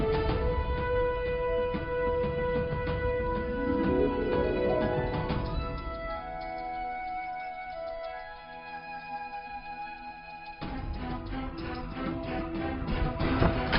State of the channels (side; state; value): both; identical; correlation 1.00